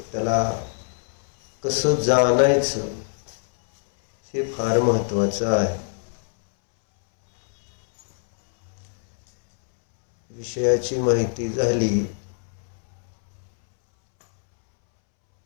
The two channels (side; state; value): right; silent; 63 dB below the other